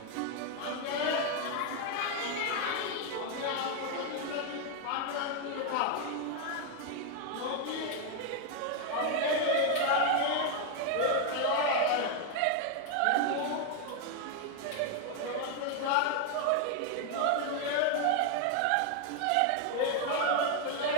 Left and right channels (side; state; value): both; different; correlation 0.01